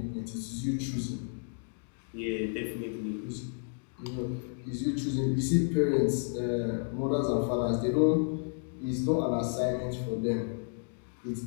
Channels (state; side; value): silent; right; 57 dB below the other